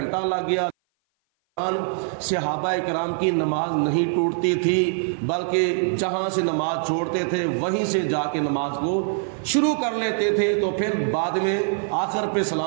لگ گیا، صحابہ کرام کی نماز نہیں ٹوٹتی تھی، بلکہ جہاں سے نماز چھوڑتے تھے وہیں سے جا کے نماز کو شروع کر لیتے تھے، تو پھر بعد میں آخر پہ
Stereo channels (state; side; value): silent; left; 56 dB below the other